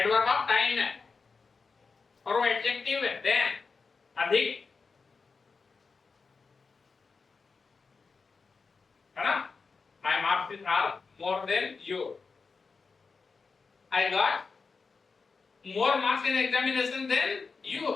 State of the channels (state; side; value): quieter; right; 4.7 dB